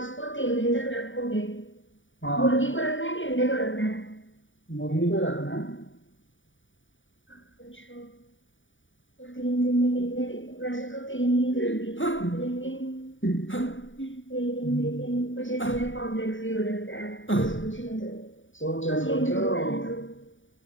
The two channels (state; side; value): late; right; 0.56 ms